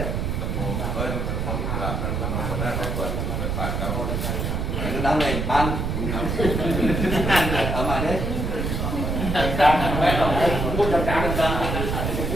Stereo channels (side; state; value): right; noise; rumble, 1 dB below the sound